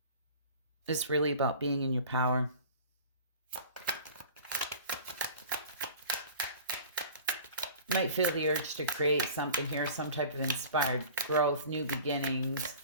It's really about being in your power. You might feel the urge to create something here, some type of inspired growth, new beginnings,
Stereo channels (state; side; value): inverted; both; correlation -0.41